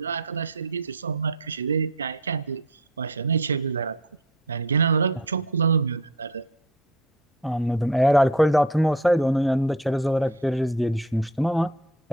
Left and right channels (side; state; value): both; normal; correlation 0.42